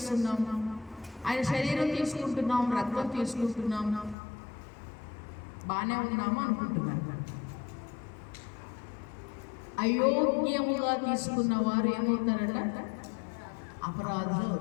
ఆయన శరీరం తీసుకుంటున్నాం, రక్తం తీసుకుంటున్నాం, బాగానే ఉన్నాము అనుకుంటున్నాను. అయోగ్యముగా తీసుకున్న వారు ఏమవుతారట? అపరాధులు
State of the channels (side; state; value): right; drops out; at 4.2 s